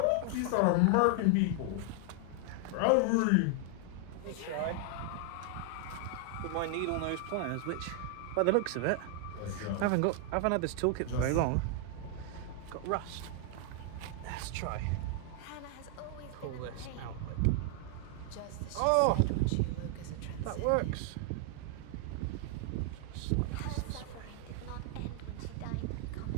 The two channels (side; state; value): both; different; correlation 0.00